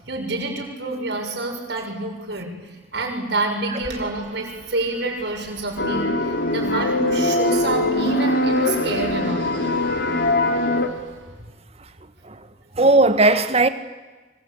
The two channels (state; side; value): normal; both; correlation 0.02